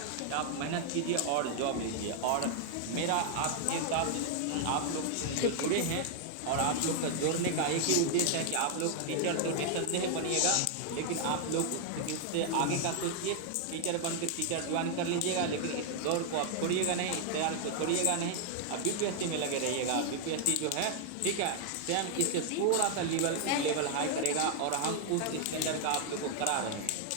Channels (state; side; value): different; both; correlation 0.00